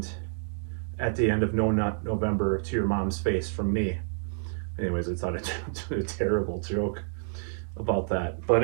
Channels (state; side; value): silent; left; 59 dB below the other